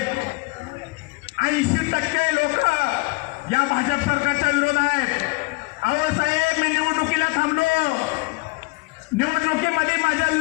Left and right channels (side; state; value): right; quieter; 25.4 dB